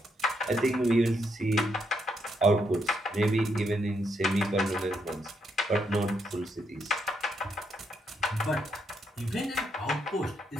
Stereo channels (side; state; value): both; normal; correlation 0.77